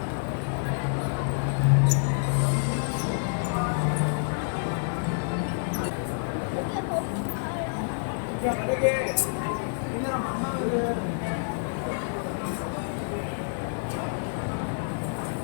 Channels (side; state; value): right; silent; digital silence